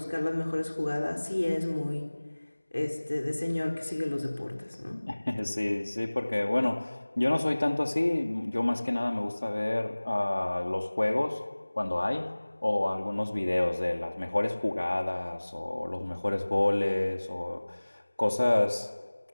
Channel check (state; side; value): inverted; both; correlation -1.00